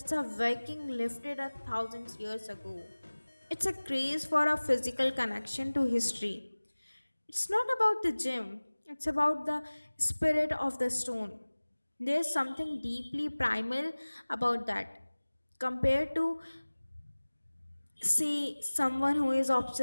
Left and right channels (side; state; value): both; inverted; correlation -1.00